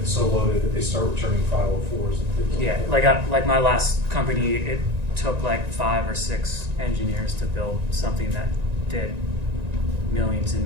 so loaded that they start returning 504s and things like that. Like my last company, it took like 5 or 6 engineers to build something that did millions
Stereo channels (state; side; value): late; left; 1.9 ms